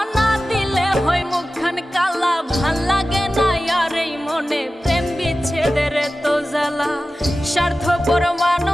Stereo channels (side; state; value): both; normal; correlation 0.95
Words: না দিলে হয় মুখখান কালা। ভাল লাগে না আর এই মনে প্রেম বিচ্ছেদের তো জ্বালা। স্বার্থপর